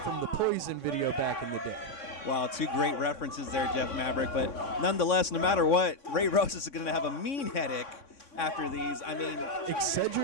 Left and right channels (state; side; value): late; right; 3.6 ms